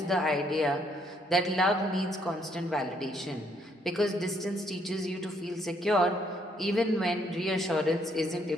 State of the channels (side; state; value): both; normal; correlation 0.70